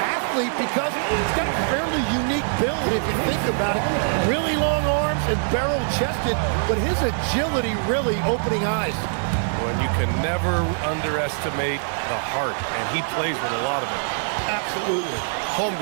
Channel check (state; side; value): silent; left; 63 dB below the other